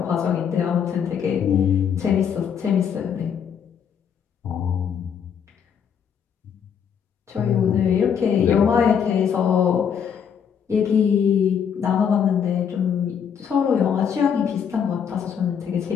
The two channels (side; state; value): right; quieter; 7.6 dB